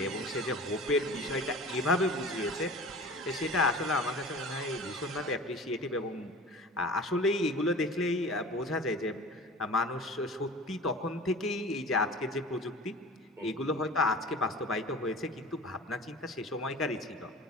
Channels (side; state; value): both; normal; correlation 0.39